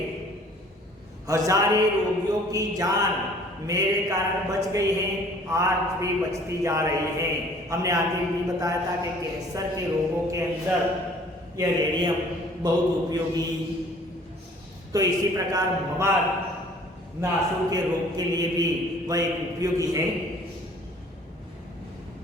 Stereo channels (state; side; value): normal; both; correlation 0.54